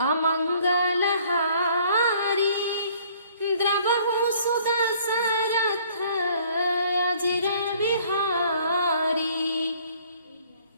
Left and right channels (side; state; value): both; inverted; correlation -0.58